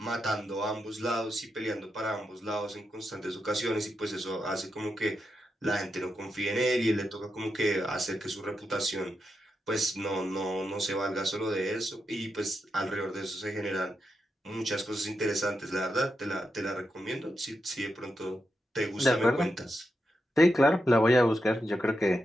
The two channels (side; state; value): both; normal; correlation 0.86